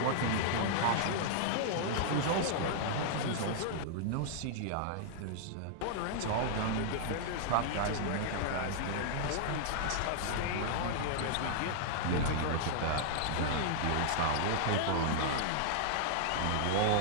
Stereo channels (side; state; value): both; different; correlation -0.01